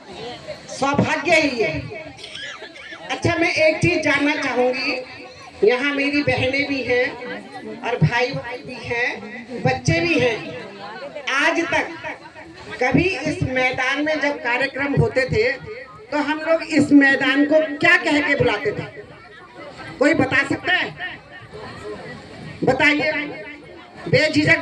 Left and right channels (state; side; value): identical; both; correlation 1.00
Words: सौभाग्य ही है। अच्छा, मैं एक चीज जानना चाहूंगी, यहाँ मेरी बहनें भी हैं और भाई भी हैं, बच्चे भी हैं। आज तक कभी इस मैदान में जब कार्यक्रम होते थे तो हम लोग इस मैदान को क्या कह के बुलाते थे? कोई बता सकता है? बताइए,